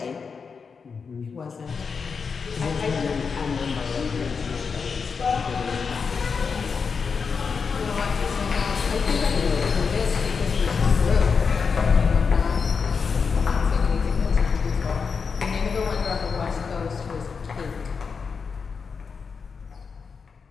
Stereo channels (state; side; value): quieter; right; 5.5 dB